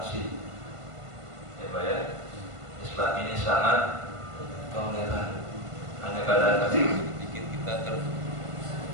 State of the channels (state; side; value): late; left; 1.5 ms